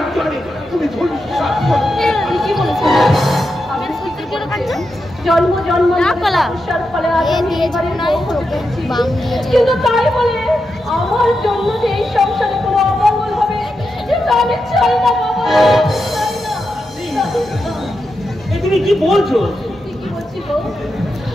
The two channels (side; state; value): both; normal; correlation 0.87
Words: জন্য তুমি ধর্মশ্বাস কি বলেছেন? জন্ম জন্ম কিন্তু তাই বলে আমার জন্য যে এই সংসারে কোনো অমঙ্গল হবে কিন্তু আমি চাই না বাবা, চাই না। তুমি কি বলছো? কি বলছি গো?